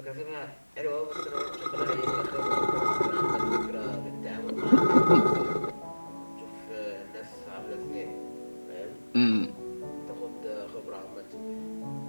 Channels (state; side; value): inverted; both; correlation -1.00